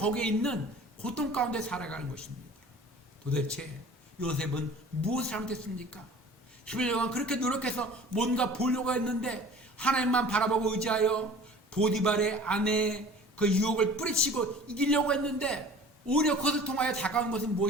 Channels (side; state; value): both; normal; correlation 0.45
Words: 있는 고통 가운데 살아가는 것입니다. 도대체 요셉은 무엇을 잘못했습니까? 11년간 그렇게 노력해서 뭔가 보려고 했는데 하나님만 바라보고 의지하여 보디발의 아내의 그 유혹을 뿌리치고 이기려고 했는데 오히려 그것을 통하여 다가온 것은